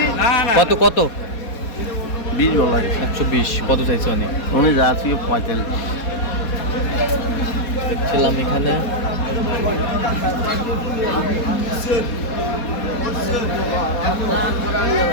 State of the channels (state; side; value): late; right; 4.2 ms